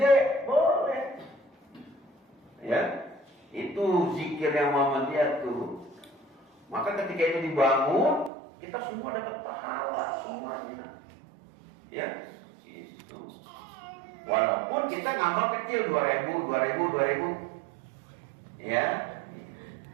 boleh. Ya, itu zikir yang Muhammadiyah tuh. Maka ketika itu dibangun, kita semua dapat pahala semuanya. Ya, itu. Walaupun kita ngamal kecil 2000. Ya.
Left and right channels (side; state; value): left; drops out; at 8.3 s